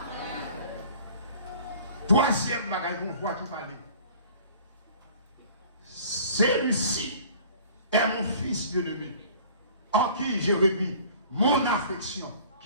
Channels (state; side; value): inverted; both; correlation -0.48